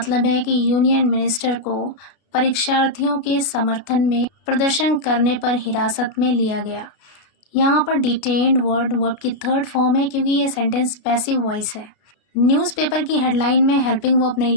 है कि यूनियन मिनिस्टर को परीक्षार्थियों के समर्थन में प्रदर्शन करने पर हिरासत में लिया गया। यहाँ पर डिटेन्ड वर्ब की थर्ड फॉर्म है क्योंकि ये सेंटेंस पैसिव वॉइस है। न्यूज़पेपर की हेडलाइन में हेल्पिंग वर्ब नहीं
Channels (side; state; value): right; late; 33 ms